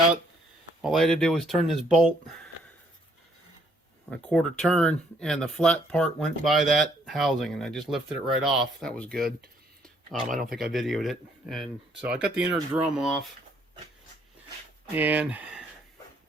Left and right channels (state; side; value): normal; both; correlation 0.67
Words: All I had to do was turn this bolt a 1/4 turn, and the flat part went by that housing, and I just lifted it right off. That was good. I don't think I videoed it. And so I got the inner drum off, and